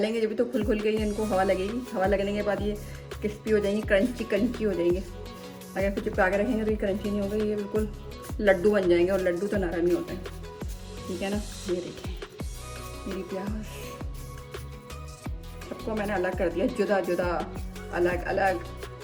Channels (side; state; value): both; identical; correlation 1.00